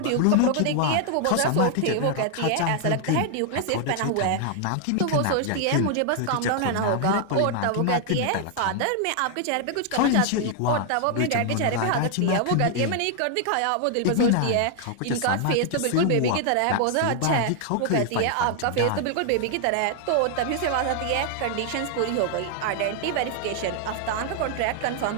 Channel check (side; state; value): both; different; correlation 0.00